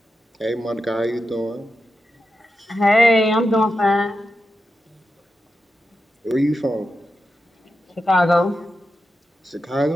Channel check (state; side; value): normal; both; correlation 0.89